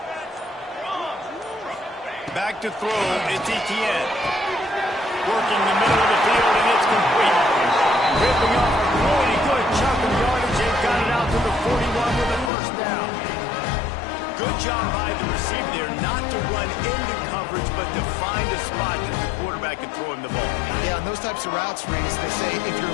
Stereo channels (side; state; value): right; drops out; at 12.5 s